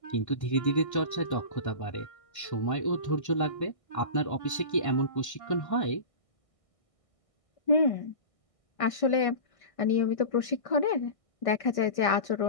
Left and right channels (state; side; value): late; right; 1.6 ms